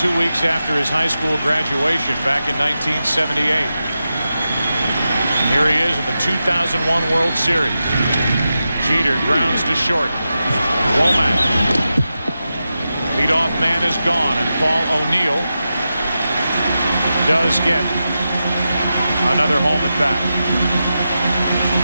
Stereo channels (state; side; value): inverted; both; correlation -0.90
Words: 2 weeks after his high school graduation back in 1978. Here he is in the 2001 World Series. Jeter grounds to short. Womack. Leadoff man is gone, and Paul O'Neill does get another home at bat.